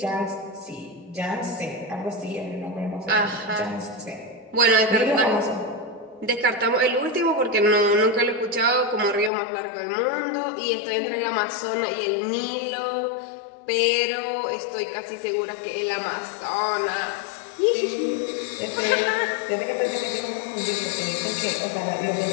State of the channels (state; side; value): drops out; right; at 9.3 s